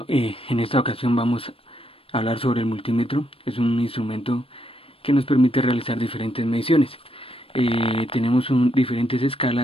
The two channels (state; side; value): late; right; 0.27 ms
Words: en esta ocasión vamos a hablar sobre el multímetro. Es un instrumento que nos permite realizar diferentes mediciones. Tenemos diferentes